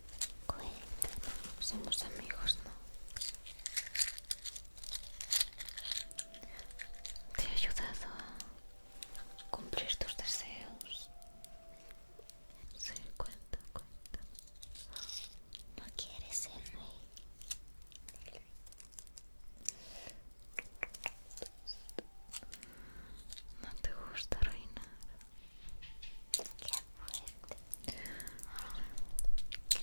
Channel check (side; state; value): both; inverted; correlation -1.00